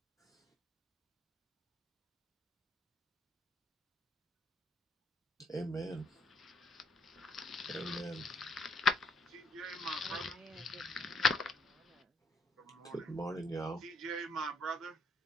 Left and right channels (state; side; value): normal; both; correlation 0.72